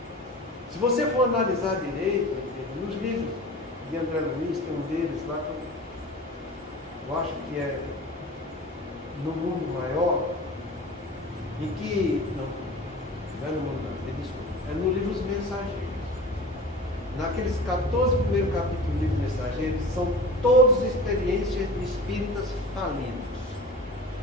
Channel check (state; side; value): normal; both; correlation 0.36